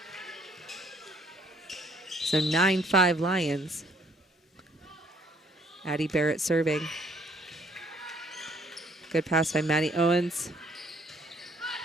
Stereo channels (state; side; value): normal; both; correlation 0.63